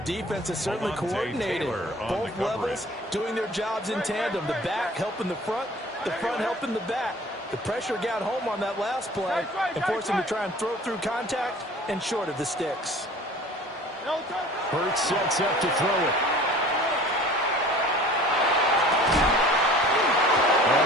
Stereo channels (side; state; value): both; normal; correlation 0.46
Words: is certainly coordinated. Both levels doing their jobs in tandem. The back helping the front helping the back. The pressure got home on that last play and forced him to try and throw through contact and short of the sticks. Hurts sets up to throw it.